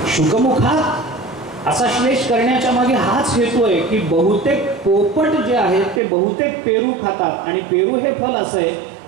शुकमुखात असा श्लेष करण्याच्या मागे हाच हेतू आहे की बहुतेक पोपट जे आहेत ते बहुतेक पेरू खातात आणि पेरू हे फल असं आहे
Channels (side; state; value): left; drops out; at 6.0 s